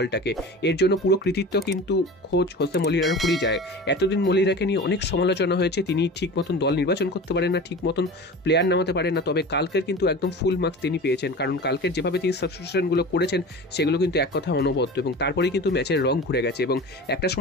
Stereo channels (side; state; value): both; normal; correlation 0.34